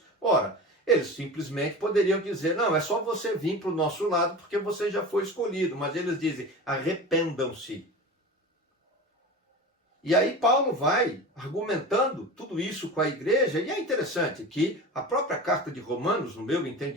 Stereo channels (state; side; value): normal; both; correlation 0.31